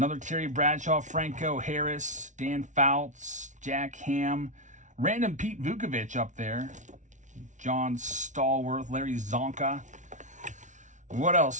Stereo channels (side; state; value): left; late; 0.36 ms